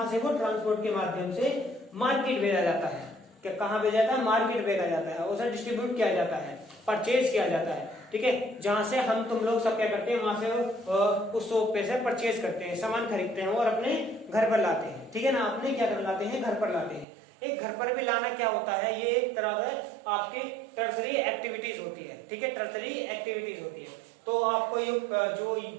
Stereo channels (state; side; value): drops out; left; at 17.1 s